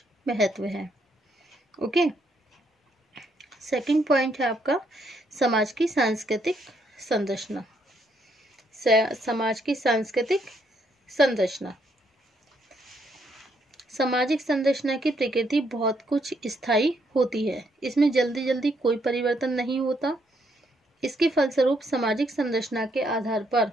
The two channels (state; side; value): normal; both; correlation 0.73